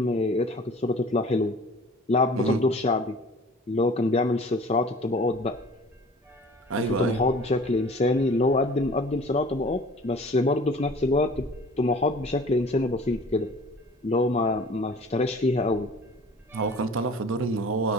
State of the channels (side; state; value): both; normal; correlation 0.47